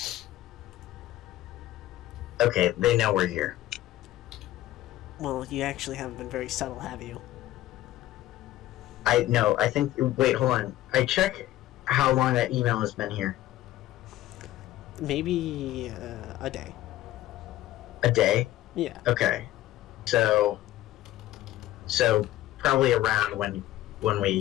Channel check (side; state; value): right; quieter; 15.0 dB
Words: Okay, they know we're here. Well, you actually haven't been very subtle, have you? I think. Wait, hold on. I check how long that email has been here. Maybe a day. A day. Yeah. Okay. So probably around when